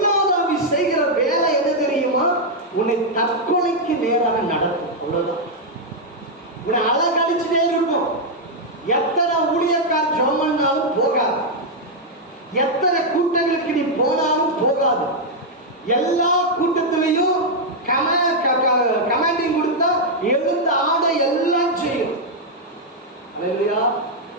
ஆவி செய்கிற வேலை என்ன தெரியுமா? உன்னை தற்கொலைக்கு நேராக நடத்தும். அவ்வளவுதான். உன்னை அழகழிச்சுட்டே இருக்கும். எத்தனை ஊழியக்கார் ஜோமன்னாலும் போகாது, எத்தனை கூட்டங்களுக்கு நீ போனாலும் போகாது. எல்லா கூட்டத்திலையும் கமாண்டிங் கொடுத்தா எழுந்த ஆட எல்லாம் செய்யும். அல்லேலூயா.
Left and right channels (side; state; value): both; normal; correlation -0.02